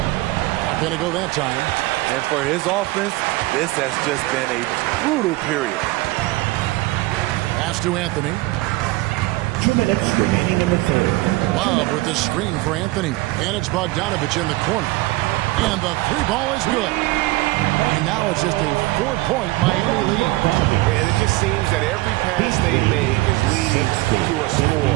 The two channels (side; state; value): left; quieter; 20.3 dB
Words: going to go that time. And for his offense, this has just been a brutal period. Pass to Anthony. 2 minutes remaining in the third. Love with the screen for Anthony. And it's Bogdanovich in the corner. And the 3 ball is good. And now it's just a 4-point Miami lead. And it just seems that every pass they make is leading to a score.